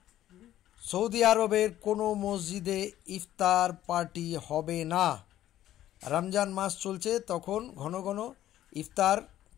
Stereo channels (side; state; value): right; quieter; 12.9 dB